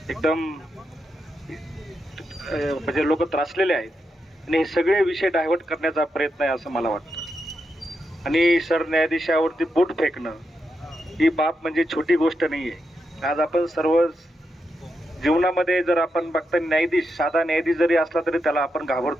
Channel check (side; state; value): both; normal; correlation 0.85